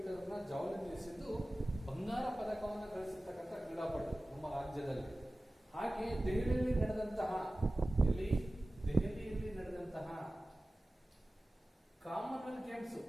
ಅನ್ನ ಜಾವ್ಲಿನ್ ಎಸೆದು ಬಂಗಾರ ಪದಕವನ್ನು ಗಳಿಸಿರ್ತಕ್ಕಂಥ ಕ್ರೀಡಾಪಟು ನಮ್ಮ ರಾಜ್ಯದಲ್ಲಿ. ಹಾಗೆ ದೆಹಲಿಯಲ್ಲಿ ನಡೆದಂತಹ ಕಾಮನ್ವೆಲ್ತ್ ಗೇಮ್ಸ್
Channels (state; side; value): normal; both; correlation 0.97